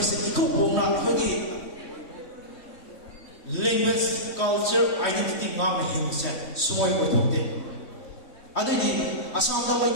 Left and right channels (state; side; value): late; right; 3.2 ms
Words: से इको बोना अखोगी language, culture, identity ngam himse soy othokte adigi asam da